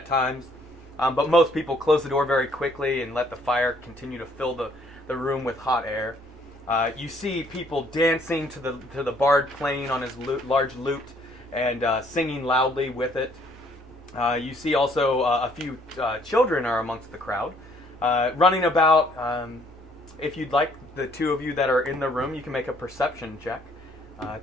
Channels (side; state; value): both; normal; correlation 0.64